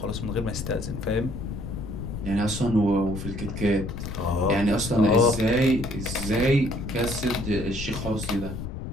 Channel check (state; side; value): noise; left; rumble, 7 dB below the sound